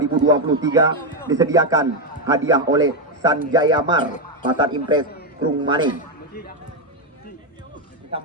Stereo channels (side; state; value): both; normal; correlation 0.05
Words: disediakan hadiah oleh Sanjaya Mar, Pasar Impres Krungmani.